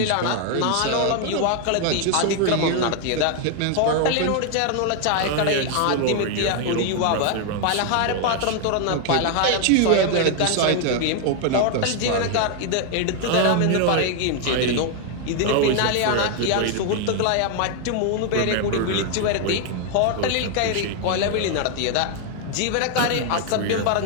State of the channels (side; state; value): both; different; correlation 0.00